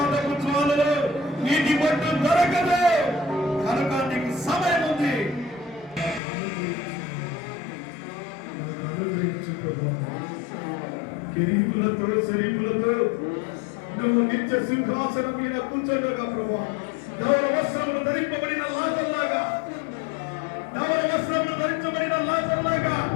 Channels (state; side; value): drops out; right; at 6.2 s